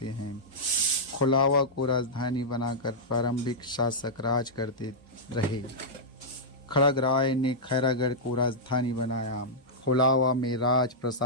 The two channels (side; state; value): both; normal; correlation -0.10